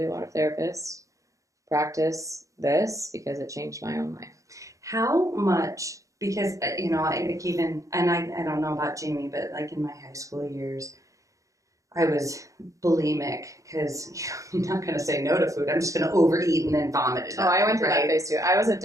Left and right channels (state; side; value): late; left; 0.16 ms